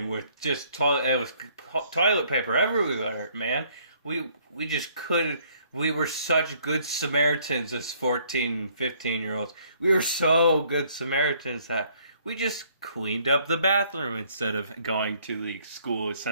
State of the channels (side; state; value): both; inverted; correlation -0.63